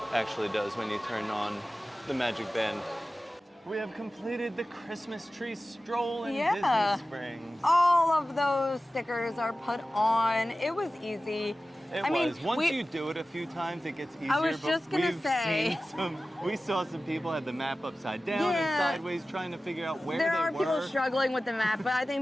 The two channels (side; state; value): both; normal; correlation 0.96